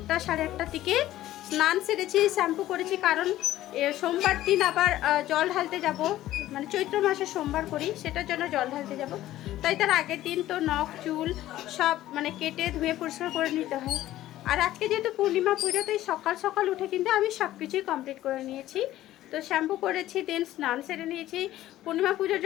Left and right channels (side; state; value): right; quieter; 14.4 dB